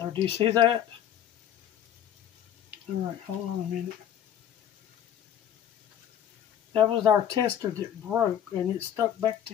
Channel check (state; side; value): quieter; right; 10.1 dB